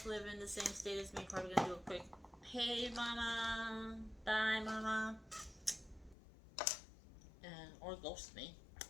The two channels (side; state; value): right; drops out; at 6.2 s